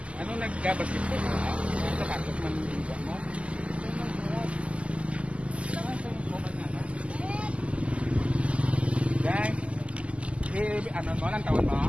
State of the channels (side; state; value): left; late; 0.059 ms